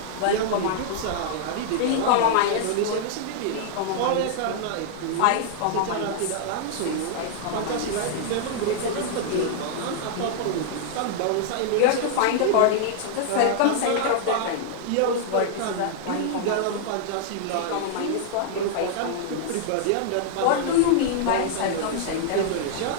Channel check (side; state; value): both; different; correlation -0.01